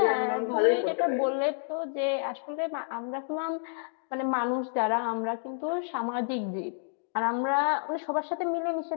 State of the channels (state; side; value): silent; right; digital silence